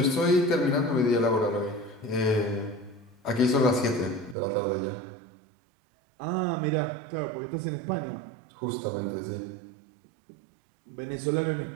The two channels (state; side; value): drops out; left; at 4.4 s